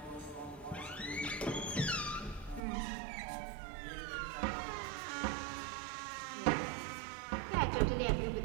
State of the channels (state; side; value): drops out; left; at 2.6 s